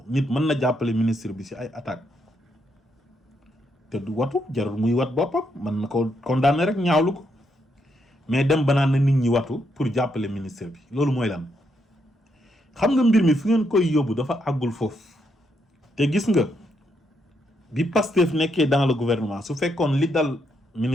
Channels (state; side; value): normal; both; correlation 0.78